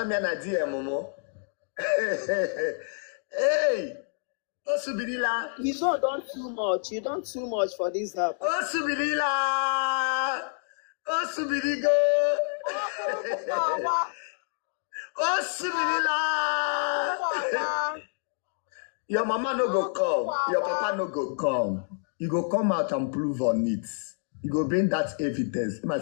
DM Momo. Hey. Osubirila. You don't too much. You don't too much for this app. Osubirila. Osubirigo. Osubirila. Your mama no go come. Your papa no go come. You go come out and prove on it. You go bring that evidence. My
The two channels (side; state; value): right; silent; 59 dB below the other